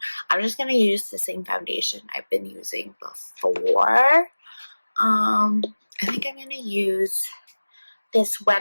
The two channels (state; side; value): inverted; both; correlation -1.00